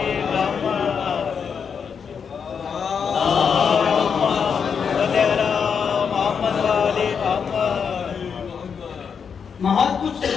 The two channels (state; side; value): quieter; right; 6.6 dB